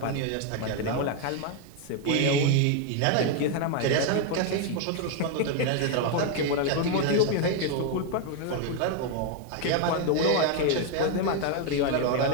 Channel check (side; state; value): both; different; correlation 0.01